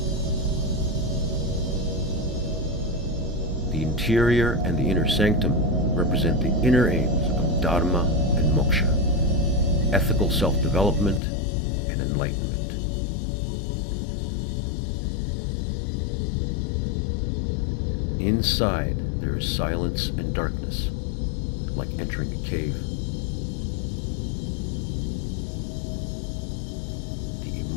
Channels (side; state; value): right; drops out; at 11.2 s